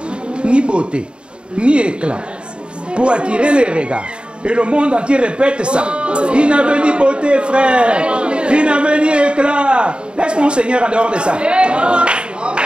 Ni beauté, ni éclat. Pour attirer les regards. Et le monde entier répète ça. Il n'avait ni beauté, frère. Il n'avait ni éclat. Laisse mon Seigneur en dehors de ça.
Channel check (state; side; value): late; left; 0.053 ms